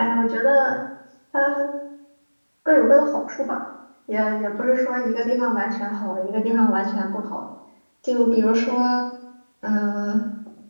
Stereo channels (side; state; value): both; inverted; correlation -1.00